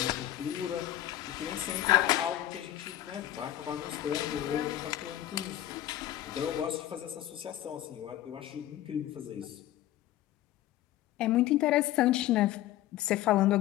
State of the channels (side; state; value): right; quieter; 13.7 dB